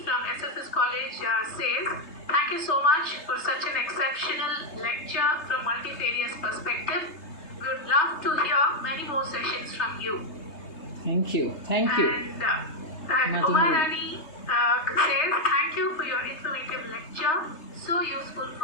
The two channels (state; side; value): late; right; 3.3 ms